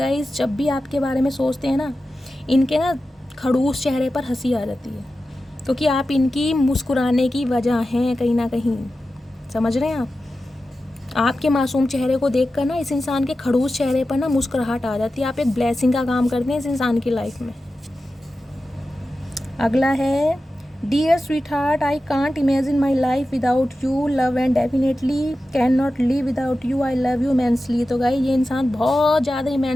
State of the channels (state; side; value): normal; both; correlation 0.93